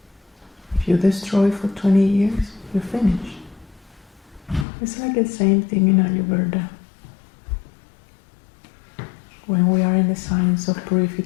If you destroy for 20 years, you're finished. It's like the same thing in Ayurveda. When we are in the science of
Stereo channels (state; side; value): drops out; right; at 4.7 s